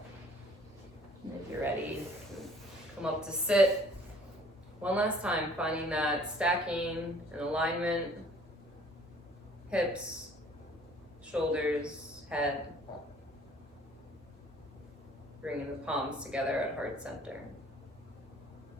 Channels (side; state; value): both; normal; correlation 0.55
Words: And if you're ready, come up to sit. One last time, finding that stacking and alignment, hips, shoulders, head. Bringing the palms together at heart center.